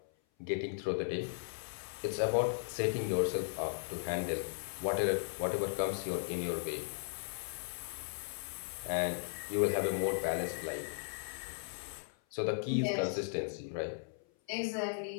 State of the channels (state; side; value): silent; right; 53 dB below the other